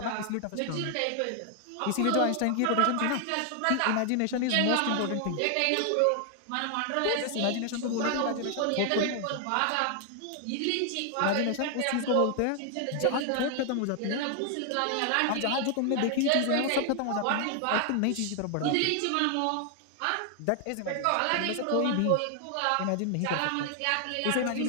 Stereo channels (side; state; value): both; different; correlation 0.00